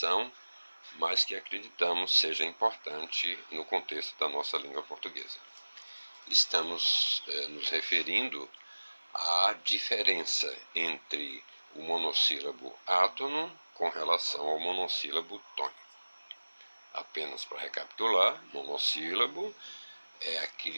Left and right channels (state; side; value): inverted; both; correlation -1.00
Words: mas que acreditamos seja importante no contexto da nossa língua portuguesa. Estamos nos referindo à diferença entre o monossílabo átono com relação ao monossílabo tônico. Apenas para recapitular, monossílabo é